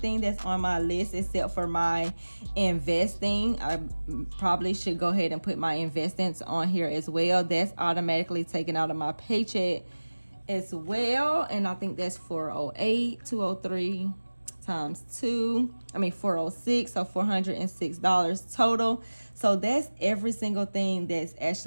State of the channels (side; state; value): both; inverted; correlation -1.00